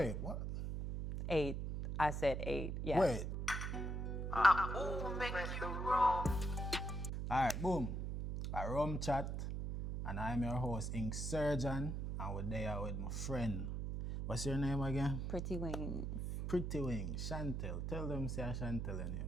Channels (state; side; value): noise; right; hum, 2 dB below the sound